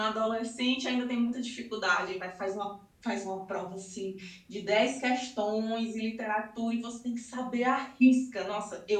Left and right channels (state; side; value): identical; both; correlation 1.00